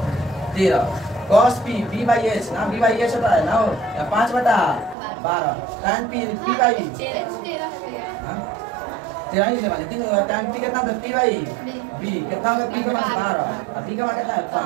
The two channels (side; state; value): left; drops out; at 5.0 s